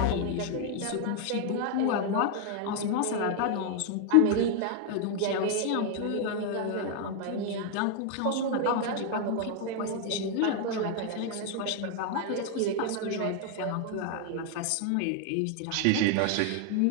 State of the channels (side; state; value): both; different; correlation 0.00